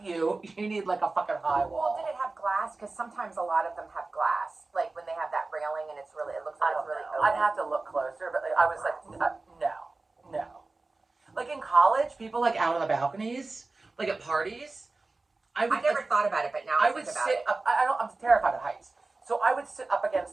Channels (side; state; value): left; quieter; 3.5 dB